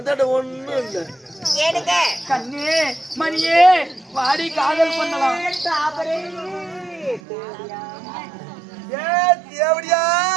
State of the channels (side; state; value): left; drops out; at 7.2 s